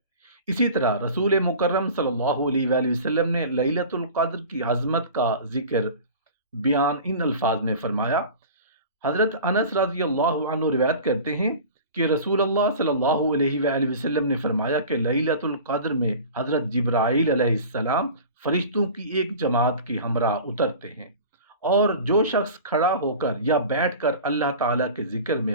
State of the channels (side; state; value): both; inverted; correlation -0.38